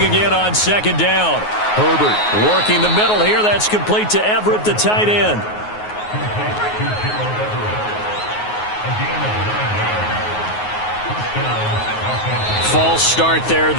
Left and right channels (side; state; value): right; late; 9.5 ms